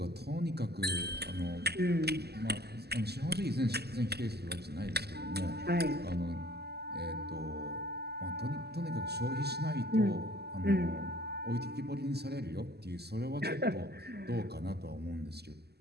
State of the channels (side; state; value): left; late; 0.47 ms